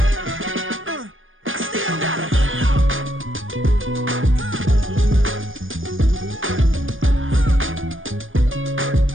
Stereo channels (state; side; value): late; left; 0.58 ms